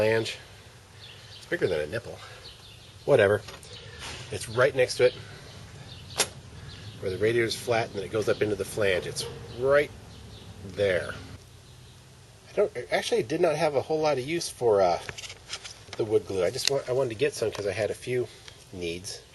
It's bigger than a nipple. Whatever. It's right next to it, where the radiator's flat and then it goes up into the flange. It's right there. I actually did not have a whole lot of use for the wood glue. I wanted to get some because I had a few needs.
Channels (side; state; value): both; identical; correlation 1.00